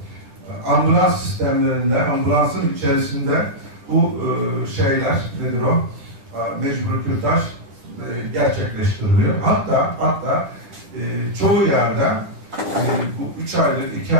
ambulans sistemlerinde, ambulansın içerisinde bu şeyler, nedir o? Mecbur kürtaj gerçekleştiriliyor. Hatta çoğu yerde bu 3 aylık, 2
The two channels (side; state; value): left; late; 10 ms